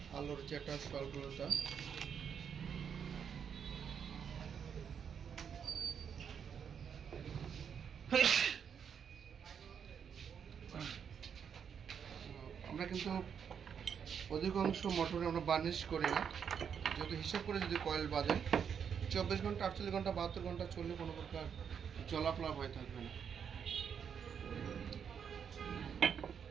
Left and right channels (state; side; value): quieter; left; 7.4 dB